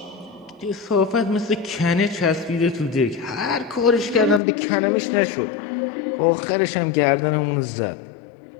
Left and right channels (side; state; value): right; drops out; at 4.4 s